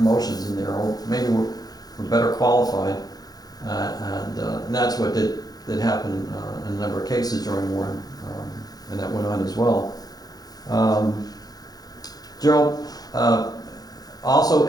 in there, or maybe were better qualified. And that's what did happen in a number of cases during war, and that went on as well. Gerald, also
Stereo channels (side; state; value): right; late; 0.19 ms